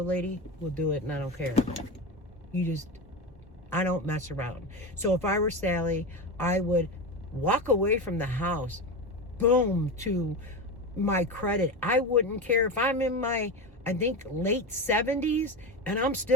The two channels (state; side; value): normal; both; correlation 0.21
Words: lady will do it, and I don't care. I don't mess around. So if I were Sally, I would walk away from the house, boom, to my credit. I wouldn't care if I'm in my, I think, late 70s, and I'm